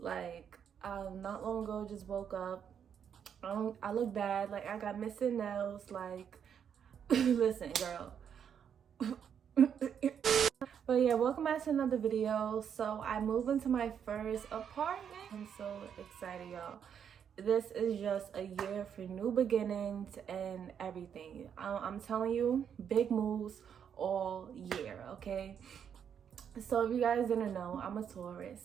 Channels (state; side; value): quieter; left; 8.1 dB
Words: not long ago just woke up. I look bad, like I got missing nails, like listen girl. But yeah, welcome back to another video. So I moved into my first apartment. I'm so excited, y'all. This is just a year for new beginnings and everything. I'm telling you, big moves all year, okay? So if you guys didn't know, I'm a